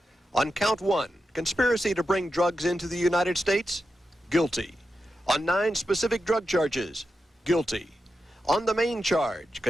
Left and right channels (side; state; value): both; normal; correlation 0.89